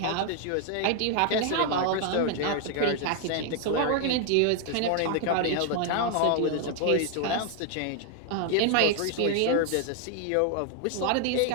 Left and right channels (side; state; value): both; different; correlation 0.00